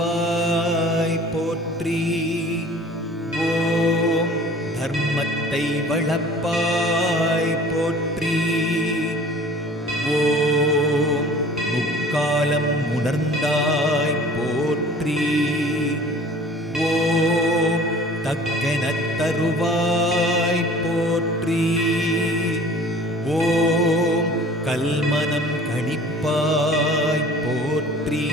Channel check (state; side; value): normal; both; correlation 0.47